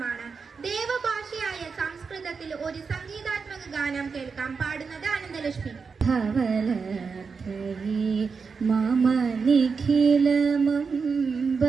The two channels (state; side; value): quieter; left; 5.2 dB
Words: ദേവഭാഷയായ സംസ്കൃതത്തിൽ ഒരു സംഗീതാത്മക ഗാനം കേൾക്കാം. പാടുന്നത് അനന്തലക്ഷ്മി. മമ നിഖിലമംബ